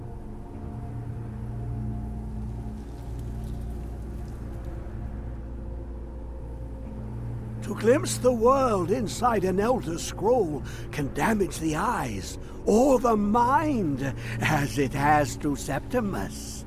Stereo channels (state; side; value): identical; both; correlation 1.00